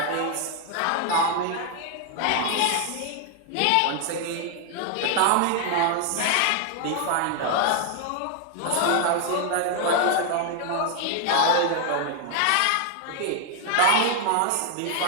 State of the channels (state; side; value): different; both; correlation 0.00